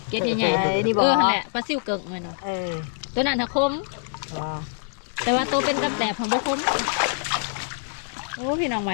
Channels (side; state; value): right; silent; digital silence